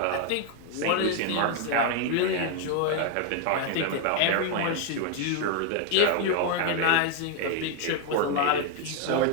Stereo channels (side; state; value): both; different; correlation 0.01